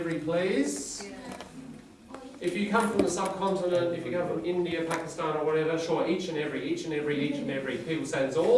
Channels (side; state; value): both; identical; correlation 1.00